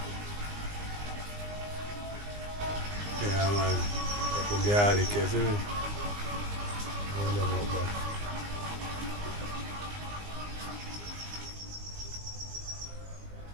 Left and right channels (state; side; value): late; left; 20 ms